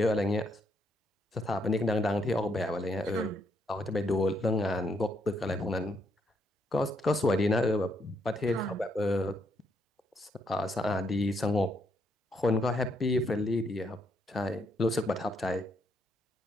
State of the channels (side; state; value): both; normal; correlation 0.75